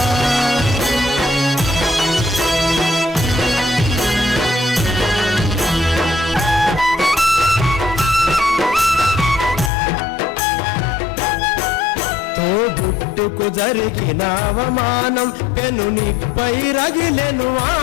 తోబుట్టుకు జరిగిన అవమానం పెనునిపై రగిలెను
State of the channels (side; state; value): right; drops out; at 9.7 s